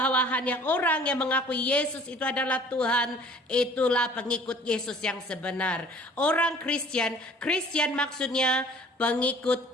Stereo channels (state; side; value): normal; both; correlation 0.51